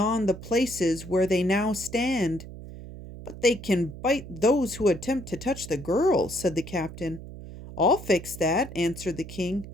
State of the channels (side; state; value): right; noise; hum, 13 dB below the sound